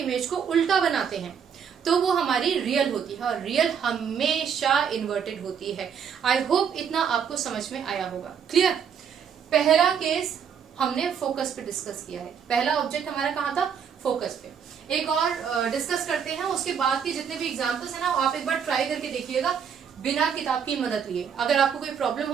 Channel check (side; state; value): left; quieter; 7.4 dB